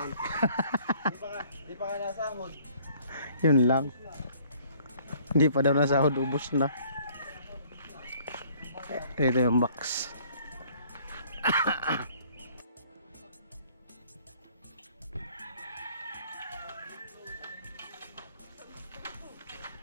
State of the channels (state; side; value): inverted; both; correlation -0.58